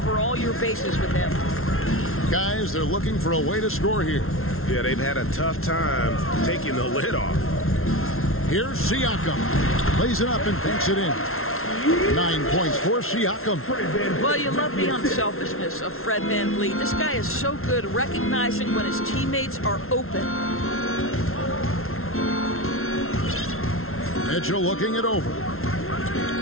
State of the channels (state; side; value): late; right; 0.62 ms